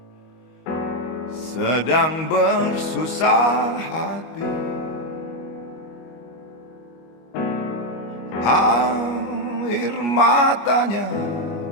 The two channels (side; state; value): right; late; 25 ms